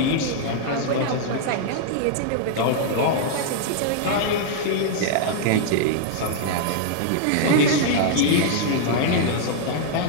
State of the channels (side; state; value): both; different; correlation -0.01